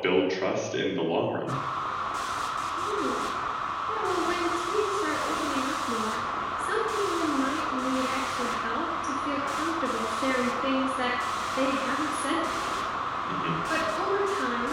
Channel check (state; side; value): identical; both; correlation 1.00